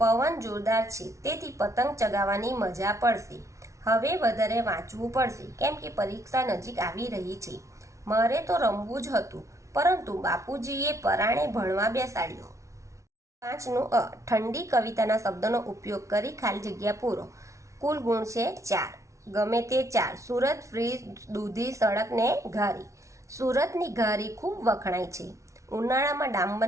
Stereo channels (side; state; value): left; late; 0.14 ms